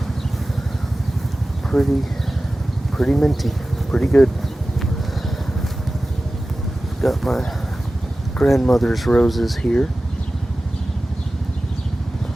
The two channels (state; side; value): normal; both; correlation 0.96